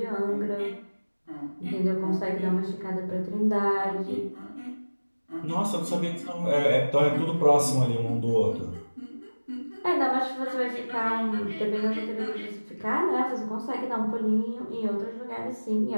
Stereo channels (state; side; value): inverted; both; correlation -1.00